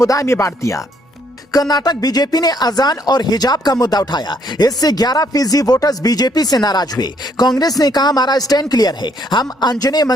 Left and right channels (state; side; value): normal; both; correlation 0.69